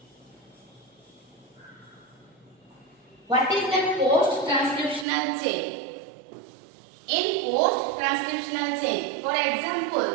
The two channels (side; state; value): left; drops out; at 5.1 s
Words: What is the post-transcriptional chain? In post-transcriptional chain, for